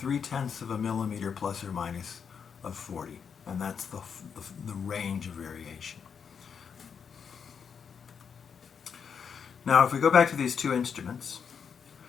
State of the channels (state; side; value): quieter; right; 6.8 dB